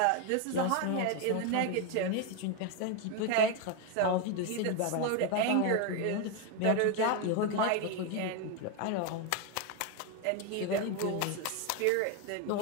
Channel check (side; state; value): both; different; correlation 0.02